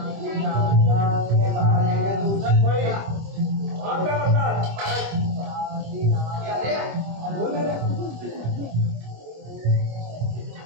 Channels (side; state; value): left; late; 25 ms